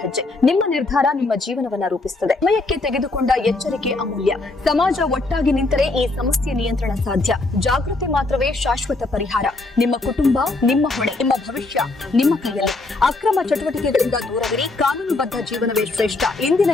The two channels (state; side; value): quieter; right; 3.2 dB